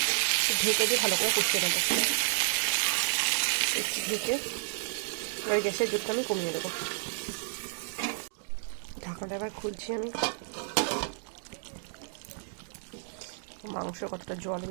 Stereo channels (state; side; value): silent; left; digital silence